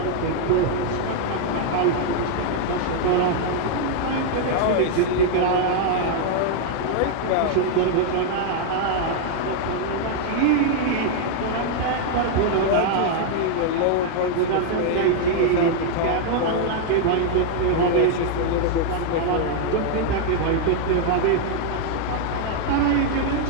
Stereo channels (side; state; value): both; different; correlation 0.00